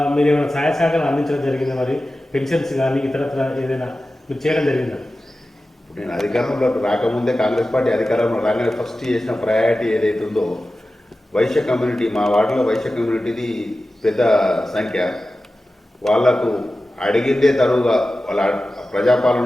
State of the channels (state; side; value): normal; both; correlation 0.94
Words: మీరు ఏమైనా సహాయ సహకారాలు అందించడం జరిగిందా? మరి పెన్షన్స్ కానీ ఇతరత్ర ఏదైనా మీరు చేయడం జరిగిందా? నేను అధికారంలోకి రాకముందే, కాంగ్రెస్ పార్టీ అధికారంలో రాగానే ఫస్ట్ చేసిన ప్రయారిటీ ఏదైతే ఉందో వైశ్య కమ్యూనిటీ, మా వార్డులో వైశ్య కమ్యూనిటీది పెద్ద సంఖ్య. వాళ్లకు అడిగిందే తరువుగా వాళ్ళ